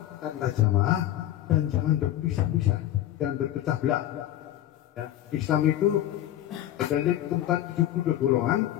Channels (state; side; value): quieter; right; 12.7 dB